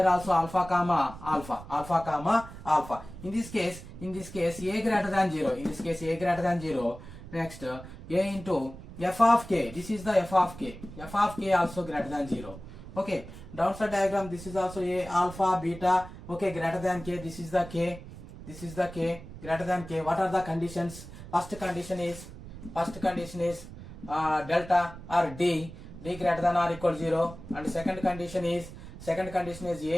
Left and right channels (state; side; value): noise; right; rumble, 14 dB below the sound